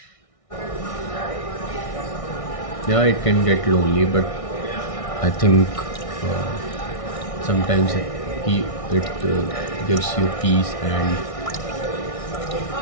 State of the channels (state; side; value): late; right; 1.6 ms